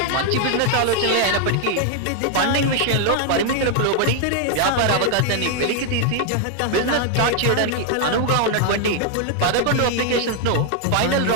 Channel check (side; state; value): both; different; correlation 0.00